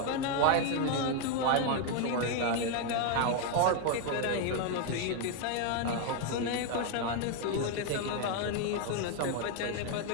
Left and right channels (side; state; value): both; different; correlation 0.01